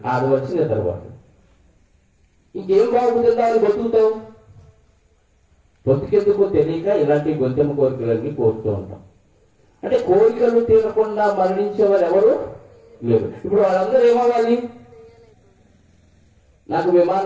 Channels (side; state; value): both; identical; correlation 1.00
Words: 6 వచ్చి నిద్రపోతాడు. ఇంకేం బాగుంటుందా అని బతుకుతావు. బతుకెందుకో తెలియక ఇలాంటి గొంతెమ్మ కోరికలన్నీ కోరుతూ ఉంటాం. అంటే కోరికలు తీరకుండా మరణించేవారు ఎవరు లేరు. ఇప్పుడు వాళ్ళందరూ ఏమవ్వాలి? నాకు